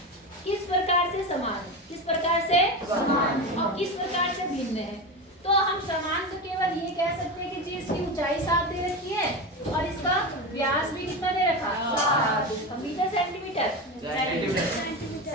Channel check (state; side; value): normal; both; correlation 0.21